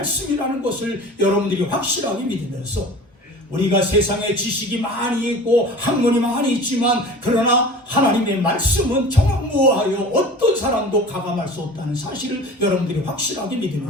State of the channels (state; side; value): normal; both; correlation 0.39